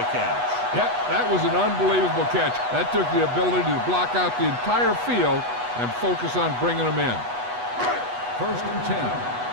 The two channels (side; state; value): left; late; 8.2 ms